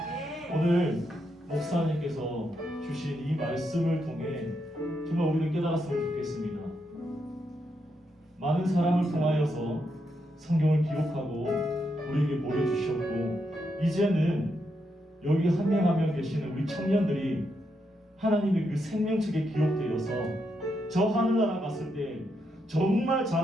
오늘 목사님께서 주신 이 말씀을 통해 정말 우리는 깨달았으면 좋겠습니다. 많은 사람을 통하여서 성경을 기록하고 우리에게 보여주셨고, 이제는 여기 한 명 한 명 계시는 우리 청년들이 하나님의 그 생명책에 기록되어서 저 하늘나라 갔을 때 정말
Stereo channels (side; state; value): both; normal; correlation 0.81